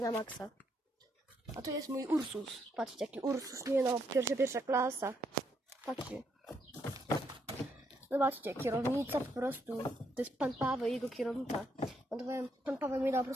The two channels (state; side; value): normal; both; correlation 0.76